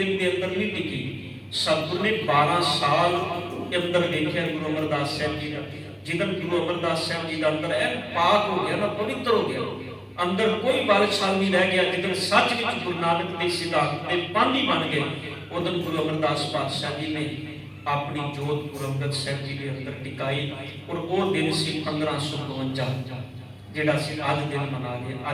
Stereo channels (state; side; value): identical; both; correlation 1.00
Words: ਦੇ ਅੰਦਰ ਨਹੀਂ ਟਿਕੀ। ਸਤਿਗੁਰੂ ਨੇ 12 ਸਾਲ ਅੰਦਰ ਵੇਖਿਆ ਗੁਰੂ ਅਮਰਦਾਸ ਸਾਹਿਬ ਜੀ ਦਾ। ਜਦੋਂ ਗੁਰੂ ਅਮਰਦਾਸ ਸਾਹਿਬ ਜੀ ਦਾ ਅੰਦਰ ਇਹ ਪਾਕ ਹੋ ਗਿਆ ਨਾ, ਪਵਿੱਤਰ ਹੋ ਗਿਆ, ਅੰਦਰ ਕੋਈ ਬਲਸ਼ਾਲ ਨਹੀਂ ਰਹਿ ਗਿਆ। ਜਦੋਂ ਸੱਚ ਵਿੱਚ ਗੁਰੂ ਨਾਨਕ ਦੇ ਸਿਧਾਂਤ ਦੇ ਪਾਂਧੀ ਬਣ ਗਏ, ਉਦੋਂ ਗੁਰੂ ਅਮਰਦਾਸ ਪਾਤਸ਼ਾਹ ਜੀ ਨੇ ਆਪਣੀ ਜੋਤ ਗੁਰੂ ਅੰਗਦ ਸਾਹਿਬ ਜੀ ਦੇ ਅੰਦਰ ਟਿਕਾਈ। ਔਰ ਉਹ ਦਿਨ ਸੀ 1552 ਜਿਹੜਾ ਅਸੀਂ ਅੱਜ ਦਿਨ ਮਨਾ ਰਹੇ।